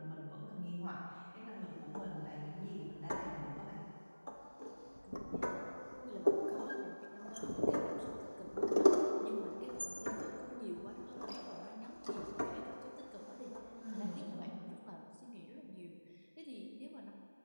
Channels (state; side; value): inverted; both; correlation -1.00